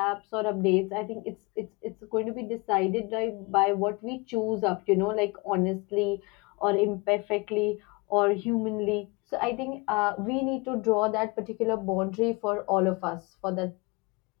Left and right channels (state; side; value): quieter; right; 26.8 dB